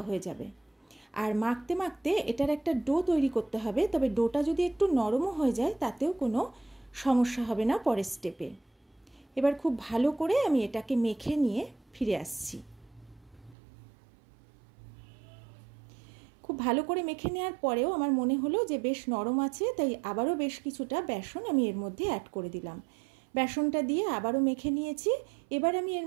হয়ে যাবে। আর মাখতে মাখতে এটার একটা ডো তৈরি করতে হবে, তবে ডোটা যদি একটু নরমও হয়ে যায় তাতেও কোনো সমস্যা হবে না পরের স্টেপে। এবার খুব ভালো করে আমি এটাকে মেখে নিয়ে ফিরে আসছি। খুব ভালো করে মেখে নেওয়ার পরেও আমার মনে হলো যে বেশ নরম আছে, তাই আবারও বেশ কিছুটা বেসন আমি এর মধ্যে অ্যাড করে দিলাম। বেসনটা দিয়ে আবারও মেখে নিয়েছি। এবার আমি এর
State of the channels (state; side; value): drops out; left; at 13.6 s